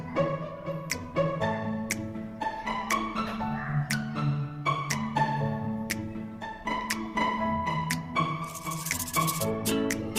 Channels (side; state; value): both; identical; correlation 1.00